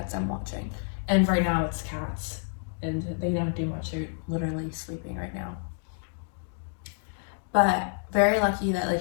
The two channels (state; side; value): silent; right; digital silence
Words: I'm watching. And right now it's cats, and they don't do much. They're literally sleeping right now. But very lucky that